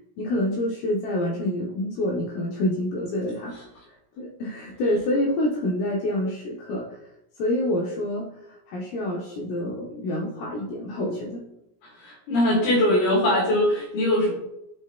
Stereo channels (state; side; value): late; right; 17 ms